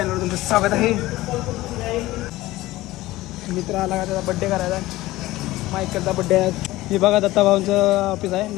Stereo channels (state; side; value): quieter; right; 17.7 dB